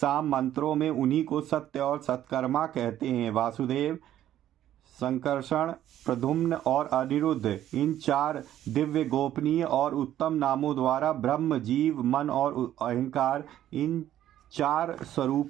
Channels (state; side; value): quieter; left; 12.0 dB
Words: मंत्रों में उन्हीं को सत्य और सत्कर्मा कहते हैं। वासुदेव, संकर्षण, प्रद्युम्न और अनिरुद्ध, इन 4 दिव्य, गोपनीय और उत्तम नामों द्वारा ब्रह्म, जीव, मन और अहंकार, इन 4